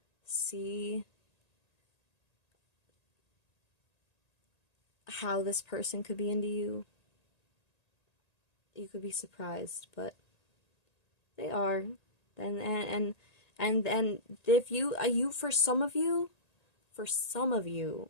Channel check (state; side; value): late; right; 1.8 ms